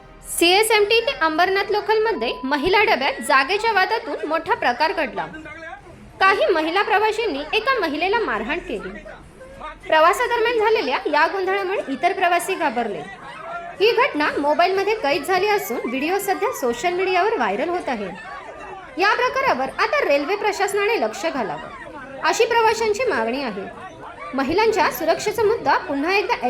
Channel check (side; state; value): both; identical; correlation 1.00